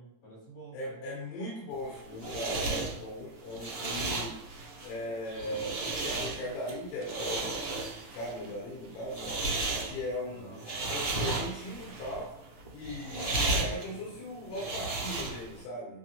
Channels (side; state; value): right; late; 18 ms